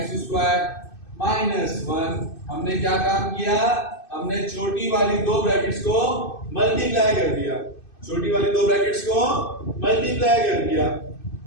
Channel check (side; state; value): right; late; 2.6 ms